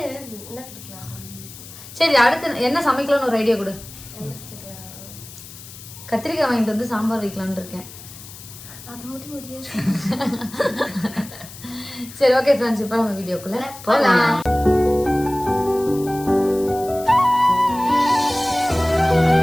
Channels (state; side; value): noise; left; hiss, 16 dB below the sound